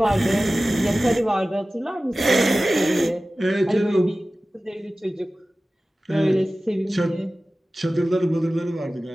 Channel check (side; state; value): both; normal; correlation 0.96